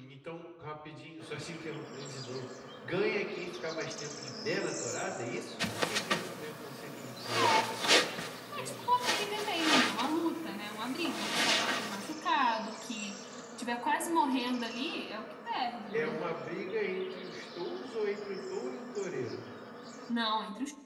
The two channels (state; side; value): identical; both; correlation 1.00